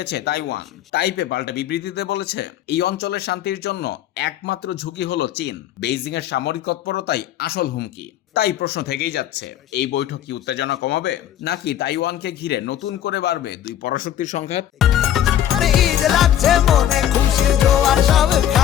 তাইওয়ান। তাইপে পাল্টা বিবৃতিতে বলেছে, এই অঞ্চলের শান্তির জন্য একমাত্র ঝুঁকি হলো চীন, বেইজিং এর সামরিক তৎপরতাই আসল হুমকি। তাই প্রশ্ন থেকেই যাচ্ছে, এই বৈঠক কি উত্তেজনা কমাবে, নাকি তাইওয়ানকে ঘিরে নতুন করে বাড়বে দুই পরাশক্তির সংঘাত? আরে ঈদ লাগছে মনে, খুশির জোয়ার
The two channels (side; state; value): right; quieter; 11.0 dB